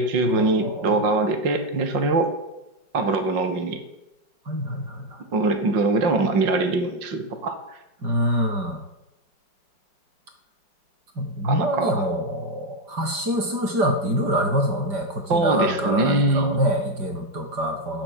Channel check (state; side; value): late; left; 5.1 ms